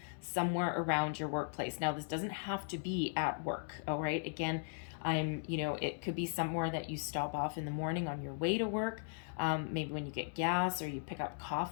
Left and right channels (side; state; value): right; silent; digital silence